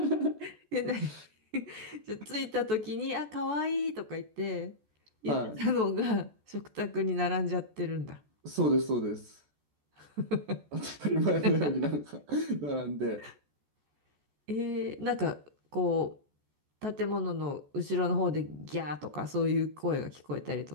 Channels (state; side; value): late; left; 14 ms